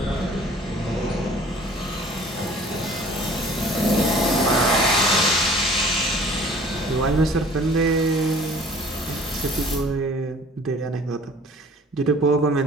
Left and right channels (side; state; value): both; normal; correlation 0.50